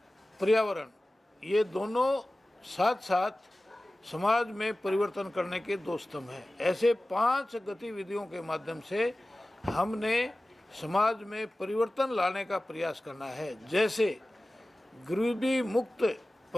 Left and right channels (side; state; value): both; normal; correlation 0.97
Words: पर्यावरण, ये दोनों साथ साथ समाज में परिवर्तन करने के 2 स्तंभ हैं। ऐसे 5 गतिविधियों के माध्यम से हमने समाज में परिवर्तन लाने का प्रयास करना है। जैसे गरीबी मुक्त